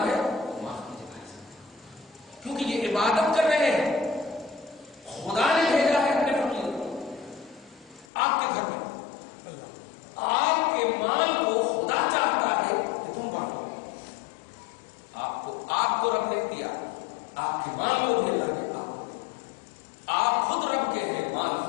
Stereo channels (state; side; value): drops out; right; at 8.1 s